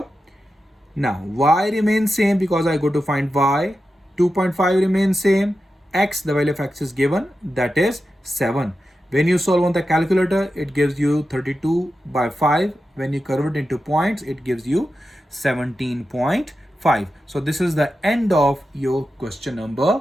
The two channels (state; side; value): normal; both; correlation 0.91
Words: Now y remains same because I go to find y. 2.5 remains same. X, the value of x is given, that is 7. When you solve on the calculator, it gives you 32 by 5. When you convert it into points, it gives you 17.5. So this is the end of your question number